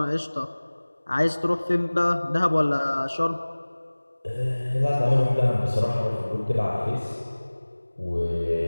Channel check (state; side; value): inverted; both; correlation -1.00